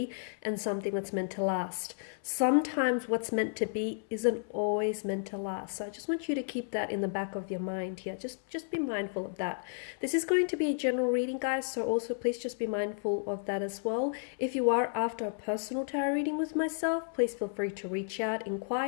and something that's meant to last. Sometimes what's meant to be isn't always meant to last. So I just want you to keep that in the back of your mind here. Just be mindful of that. This is going to be a general reading, guys, so also please just be mindful of that as well. If you are after a personal tarot reading with myself, please feel free to reach out,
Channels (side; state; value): right; silent; 56 dB below the other